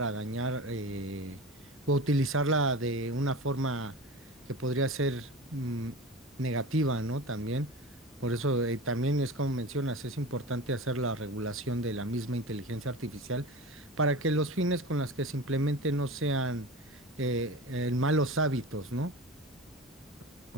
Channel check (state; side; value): normal; both; correlation 0.32